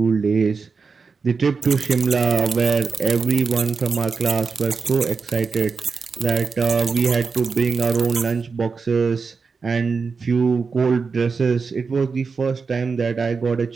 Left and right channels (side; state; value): left; quieter; 5.0 dB